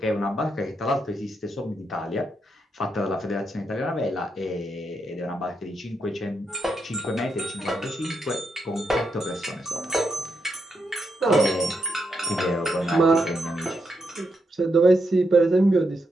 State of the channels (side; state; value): both; normal; correlation 0.82